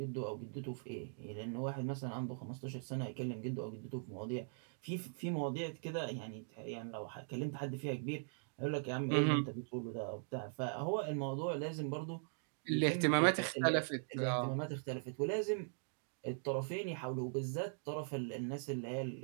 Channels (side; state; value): left; silent; digital silence